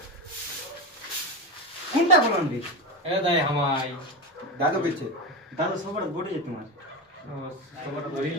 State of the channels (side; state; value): both; normal; correlation 0.17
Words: কোনটা বলন রে এ দাই হামাই দাদু কইছে দাদু সবার বড় তোমার সবার বড়ি